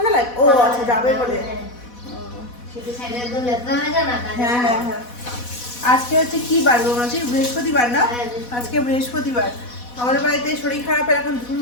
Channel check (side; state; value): right; late; 4.1 ms